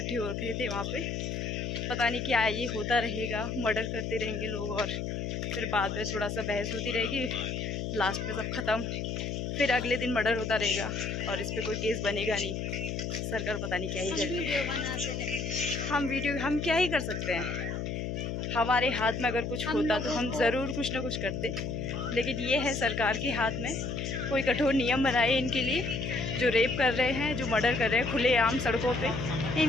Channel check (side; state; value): left; noise; hum, 3 dB below the sound